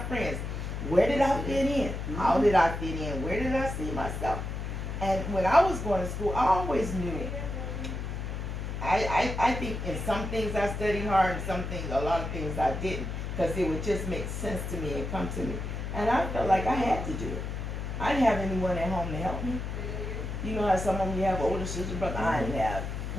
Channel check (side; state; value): left; noise; hum, 5 dB below the sound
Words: Where did I fit in? How did I fit in? Where did I see myself? And when I was going to school, I always knew it. I think in some things I studied hard, and some things, a lot of things I didn't, because it would just make sense to me and come to me. And I felt like I had to do it. I didn't have anyone at home to help me. You know how some of you have older sister, brother? I didn't have